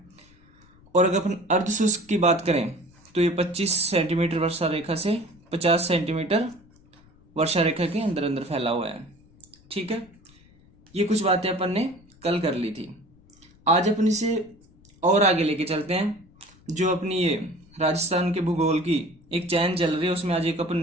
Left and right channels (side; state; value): left; noise; rumble, 28 dB below the sound